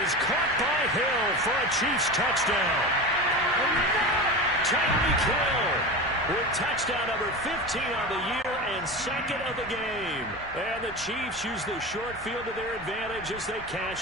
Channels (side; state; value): both; normal; correlation 0.26